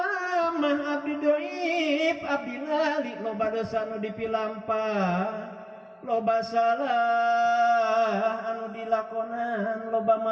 abdi doib abdi lali loba dosa anu dipilampah loba salah anu dilakonan loba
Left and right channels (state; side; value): identical; both; correlation 1.00